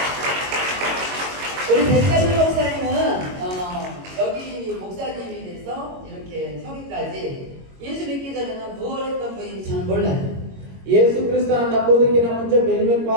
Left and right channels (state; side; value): late; left; 22 ms